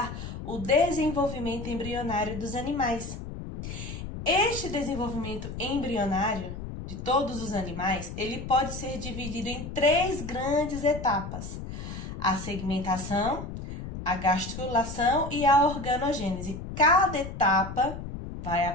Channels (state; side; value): noise; left; rumble, 8 dB below the sound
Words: o desenvolvimento embrionário dos animais. Este desenvolvimento embrionário de todos os animais, ele pode ser dividido em três grandes etapas: a segmentação, a gastrulação e a organogênese. Cada etapa vai